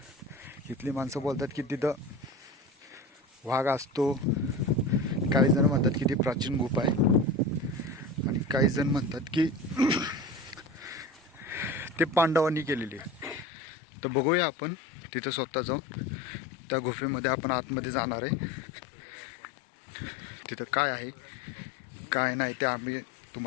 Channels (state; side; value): drops out; right; at 13.5 s